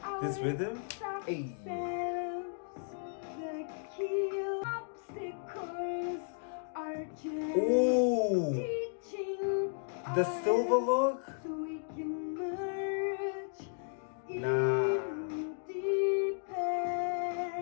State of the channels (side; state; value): right; silent; digital silence